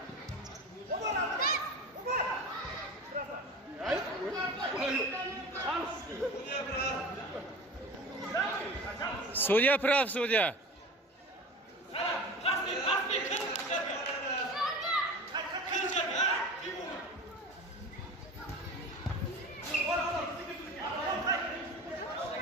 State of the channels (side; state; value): both; normal; correlation 0.35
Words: Судья прав, судья.